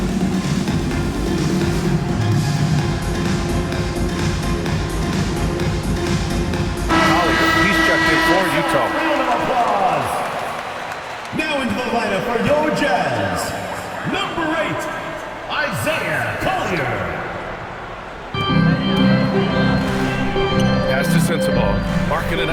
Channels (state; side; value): identical; both; correlation 1.00